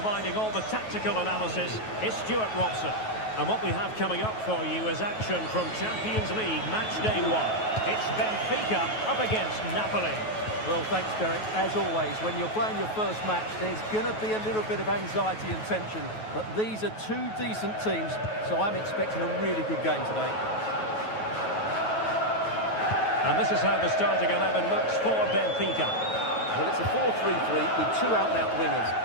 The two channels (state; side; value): late; right; 9.3 ms